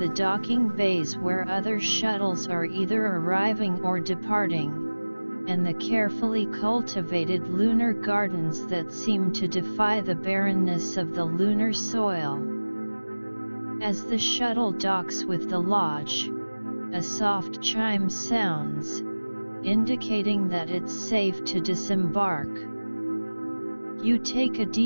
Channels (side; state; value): both; inverted; correlation -1.00